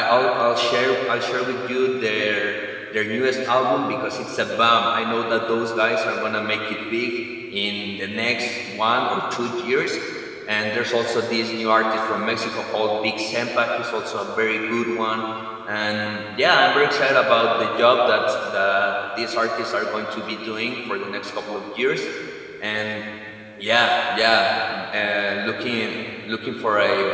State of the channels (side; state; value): both; identical; correlation 1.00